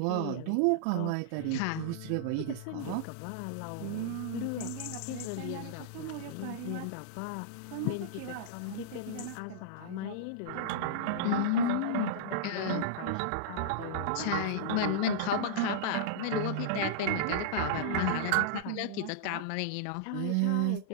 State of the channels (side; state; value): both; different; correlation -0.03